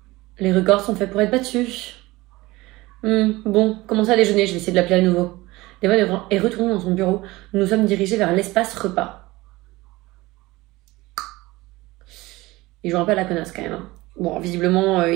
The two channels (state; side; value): quieter; left; 20.2 dB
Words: Les records sont faits pour être battus. Bon, commencez à déjeuner, je vais essayer de l'appeler à nouveau. Devon est retourné dans son bureau. Nous nous sommes dirigés vers l'espace repas. Il joue un peu à la connasse quand même. Bon, visiblement,